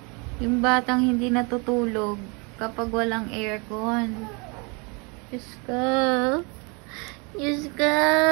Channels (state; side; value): quieter; left; 31.2 dB